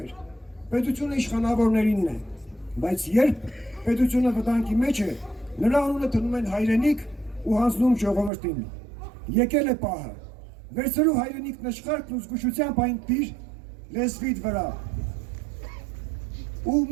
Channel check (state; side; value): drops out; left; at 8.3 s